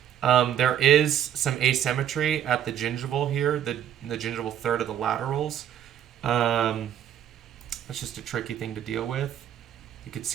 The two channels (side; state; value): left; quieter; 10.0 dB